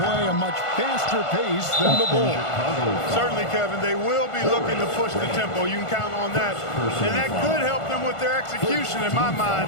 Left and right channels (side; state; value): right; late; 1.5 ms